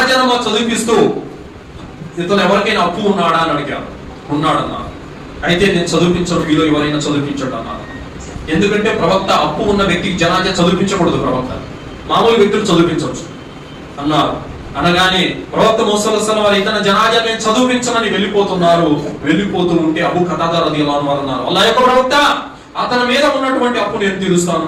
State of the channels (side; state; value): both; identical; correlation 1.00